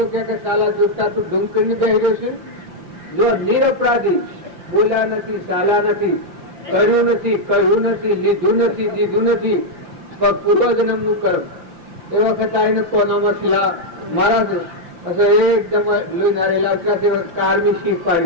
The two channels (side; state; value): left; late; 5.8 ms